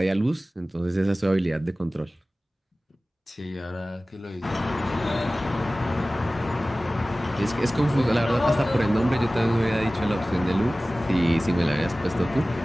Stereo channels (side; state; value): both; normal; correlation 0.97